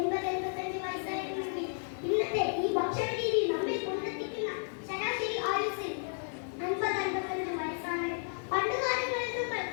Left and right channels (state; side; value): silent; right; digital silence